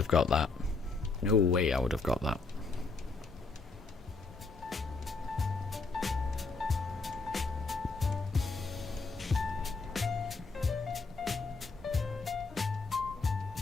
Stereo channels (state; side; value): quieter; right; 4.0 dB